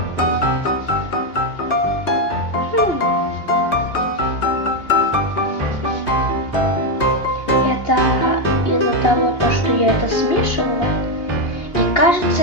Это из-за того, что я это смешивала и,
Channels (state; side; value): late; right; 2.8 ms